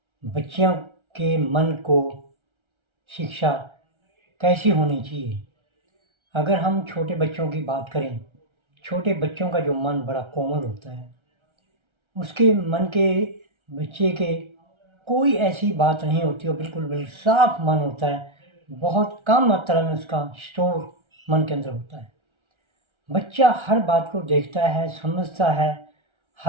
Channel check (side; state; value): left; late; 1.3 ms